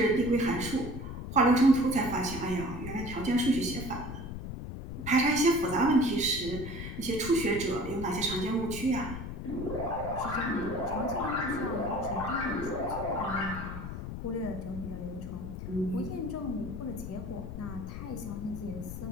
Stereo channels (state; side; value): noise; left; rumble, 8 dB below the sound